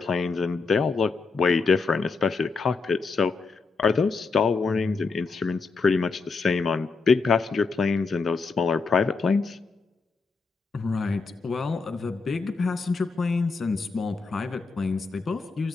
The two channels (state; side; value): quieter; right; 4.4 dB